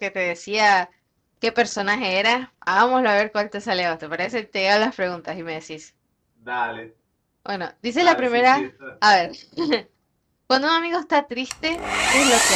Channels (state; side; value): identical; both; correlation 1.00